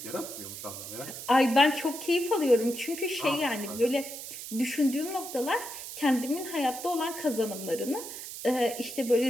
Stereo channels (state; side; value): noise; right; hiss, 10 dB below the sound